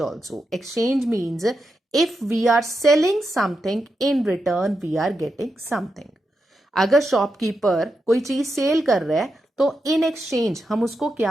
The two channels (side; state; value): both; normal; correlation 0.86